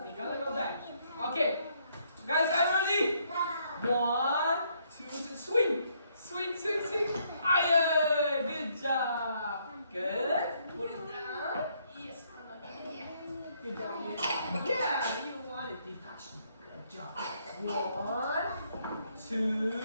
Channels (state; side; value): inverted; both; correlation -0.70